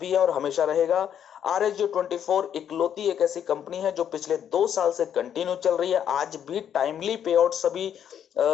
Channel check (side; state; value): right; quieter; 9.2 dB